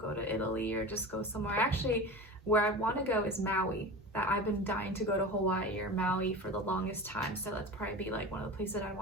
to Italy or just go somewhere. Actually, where I want to go is Maui. That I've been dying to go to Hawaii or Maui for the longest time, so that's probably be like one of the places I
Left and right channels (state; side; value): normal; both; correlation 0.31